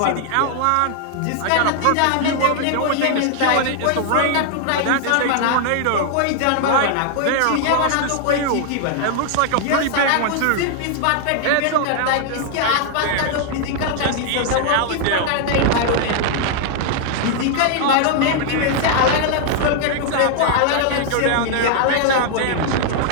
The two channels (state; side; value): different; both; correlation 0.00